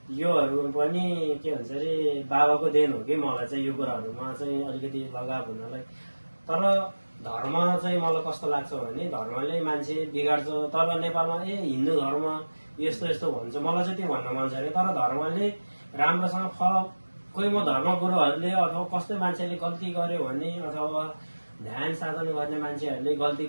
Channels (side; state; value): both; inverted; correlation -1.00